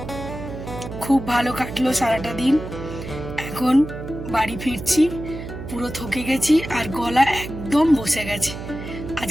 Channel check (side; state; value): right; noise; hum, 9 dB below the sound